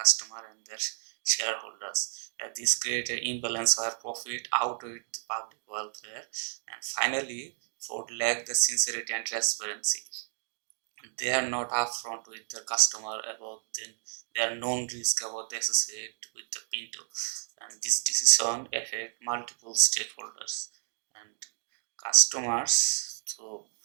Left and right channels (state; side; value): silent; left; digital silence